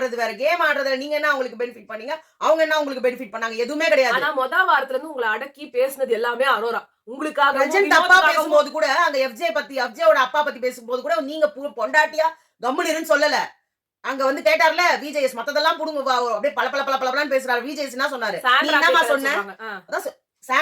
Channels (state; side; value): identical; both; correlation 1.00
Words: வேற. கேம் ஆடுறதுல நீங்க என்ன அவங்களுக்கு பெனிஃபிட் பண்ணீங்க, அவங்க என்ன உங்களுக்கு பெனிஃபிட் பண்ணாங்க? எதுவுமே கிடையாது. ஆனா மொத வாரத்துல இருந்து உங்களை அடக்கி பேசினது எல்லாமே அரோரா. உங்களுக்காக அப்பா பேசும்போது கூட அந்த எஃப்ஜேயோட அப்பா பத்தி பேசும்போது கூட நீங்க பொண்டாட்டியா கம்முனிருன்னு சொல்லல. அங்க வந்து கேட்டார்ல விஜேஎஸ் மத்ததெல்லாம் புடுங்க அப்படியே பல பல பல பலன்னு பேசுறாரு. விஜேஎஸ் என்ன சொன்னாரு? நீ என்னமா சொன்ன?